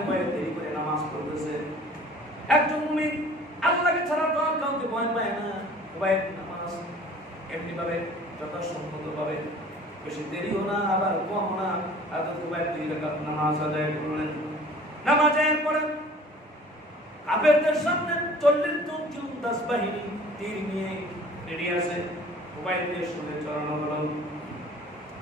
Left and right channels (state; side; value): normal; both; correlation 0.48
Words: ভয়ে দেরি করে নামাজ পড়তেছে। একজন মুমিন আল্লাহকে ছাড়া তো আর কাউকে ভয় পায় না। খুবাইব নামাজ এমনি ভাবে যথাসম্মতভাবে, বেশি দেরিও না আবার কম না, হযরত খুবাইব 2 রাকাত নামাজ আদায় করলেন। নামাজের পরে কাফেরদের সামনে 40 জন জুলদাস বাহিনী তীর নিয়ে রেডি আছে, খুবাইবকে শুনে চড়ানো হলো।